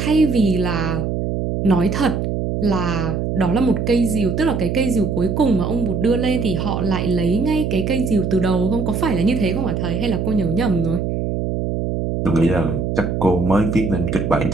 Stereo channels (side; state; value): right; noise; hum, 1 dB below the sound